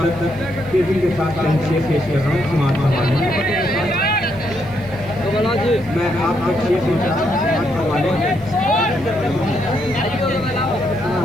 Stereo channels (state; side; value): noise; right; hiss, 29 dB below the sound